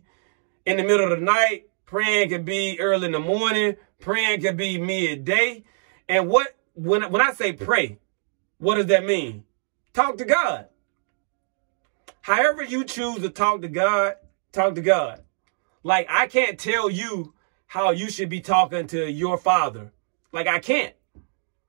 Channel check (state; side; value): silent; left; digital silence